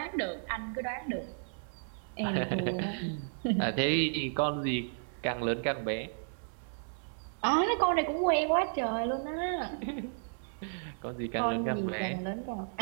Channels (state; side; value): silent; left; 56 dB below the other